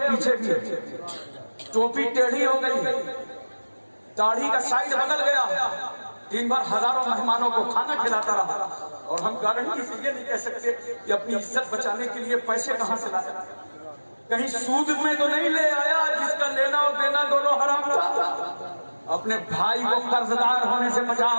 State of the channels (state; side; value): inverted; both; correlation -1.00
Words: भी है, टोपी टेढ़ी हो गई है, दाढ़ी का साइड बदल गया, दिन भर हजारों मेहमानों को खाना खिलाता रहा। और हम गारंटी से ये नहीं कह सकते कि अपनी इज्जत बचाने के लिए पैसे कहां से लाया, कहीं सूद में तो नहीं ले आया जिसका लेना और देना दोनों हराम था। अपने भाई को कर्जदार होने से